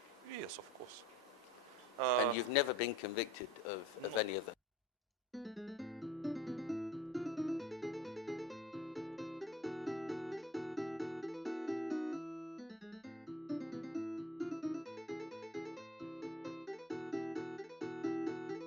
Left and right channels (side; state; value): both; normal; correlation 0.47